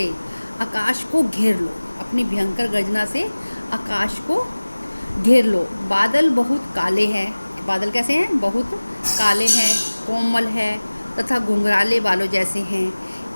आकाश को घेर लो। बादल बहुत काले हैं। बादल कैसे हैं? बहुत काले हैं, कोमल है तथा घुंघराले बालों जैसे हैं।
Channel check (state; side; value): inverted; both; correlation -1.00